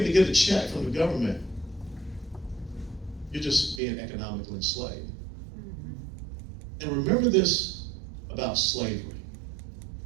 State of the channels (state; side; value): drops out; left; at 3.8 s